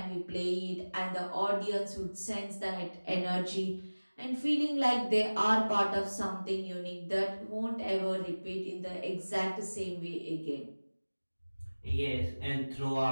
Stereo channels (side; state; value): both; inverted; correlation -1.00